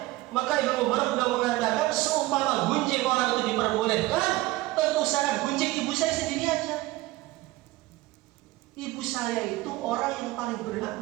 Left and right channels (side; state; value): left; quieter; 18.6 dB